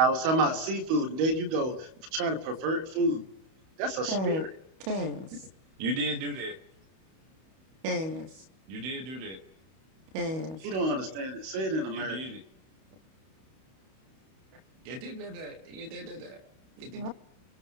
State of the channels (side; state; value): left; late; 31 ms